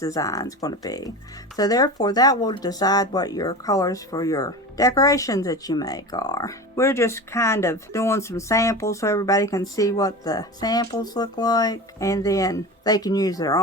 is going to be. So therefore, that will decide what your colors for your decorations that you make are. We're just kind of doing some samples so everybody can see what the samples look like, and then they can use their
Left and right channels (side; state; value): both; normal; correlation 0.29